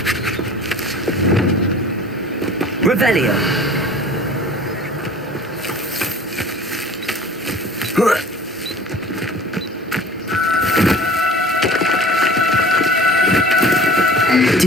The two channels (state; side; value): normal; both; correlation 0.44